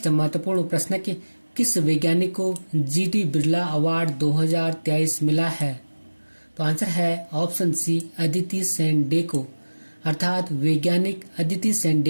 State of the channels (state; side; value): inverted; both; correlation -1.00